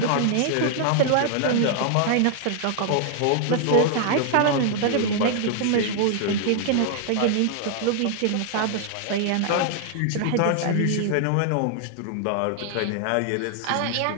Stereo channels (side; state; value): both; different; correlation 0.00